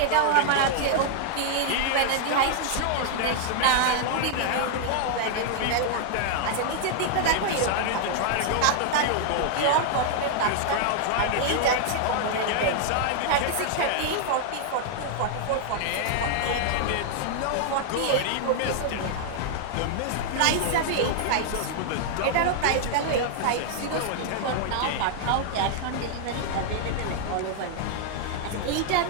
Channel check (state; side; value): different; both; correlation 0.00